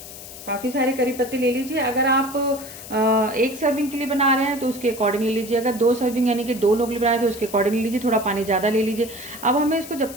काफ़ी सारे करी पत्ते ले लीजिए। अगर आप एक सर्विंग के लिए बना रहे हैं तो उसके अकॉर्डिंग ले लीजिए। अगर 2 सर्विंग यानी कि 2 लोग बना रहे हैं तो उसके अकॉर्डिंग ले लीजिए। थोड़ा पानी ज़्यादा ले लीजिए। अब हमें इसको जब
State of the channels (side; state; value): left; noise; hiss, 14 dB below the sound